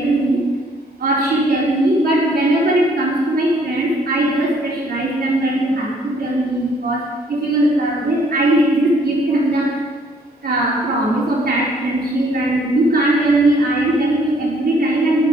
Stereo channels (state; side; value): normal; both; correlation 0.63